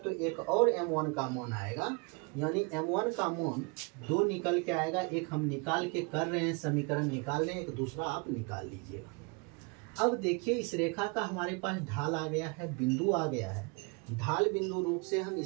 एक और m1 का मान आएगा, यानी m1 का मान 2 निकल के आएगा। एक हम निकाल के कर रहे हैं, समीकरण निकाल रहे हैं, एक दूसरा आप निकाल लीजिएगा। अब देखिए, इस रेखा का हमारे पास ढाल आ गया है, बिंदु आ गया है। ढाल बिंदु रूप से हम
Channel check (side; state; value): left; quieter; 31.0 dB